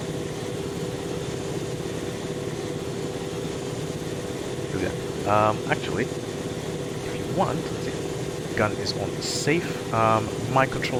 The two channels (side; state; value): both; identical; correlation 1.00